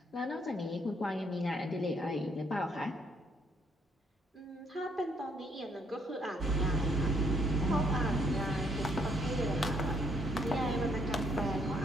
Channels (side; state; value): both; normal; correlation 0.69